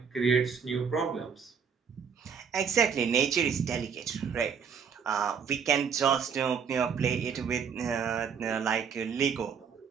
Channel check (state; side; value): quieter; left; 6.7 dB